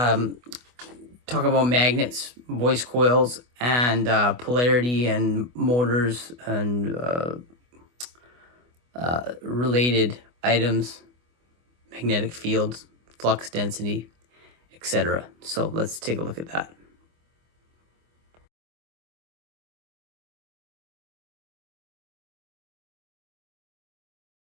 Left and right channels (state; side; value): late; left; 24 ms